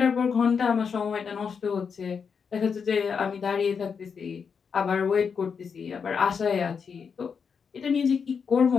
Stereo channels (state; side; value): quieter; right; 6.2 dB